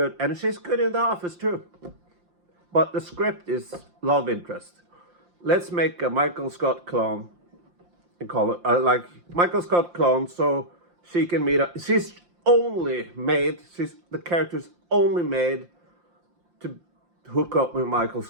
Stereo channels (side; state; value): left; late; 5.7 ms